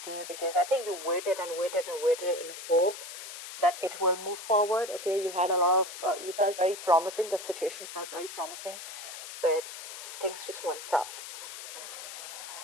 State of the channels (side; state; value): left; noise; hiss, 10 dB below the sound